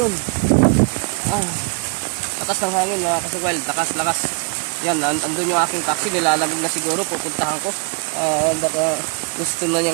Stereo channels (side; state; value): left; quieter; 36.9 dB